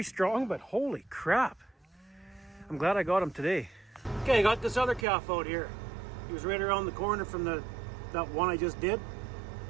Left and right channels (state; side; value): drops out; left; at 5.1 s